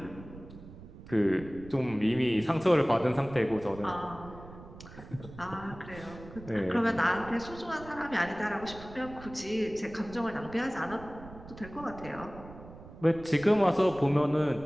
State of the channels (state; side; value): noise; right; rumble, 16 dB below the sound